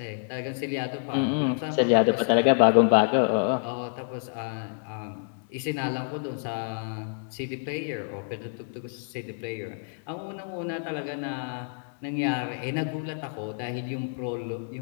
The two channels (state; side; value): silent; right; 59 dB below the other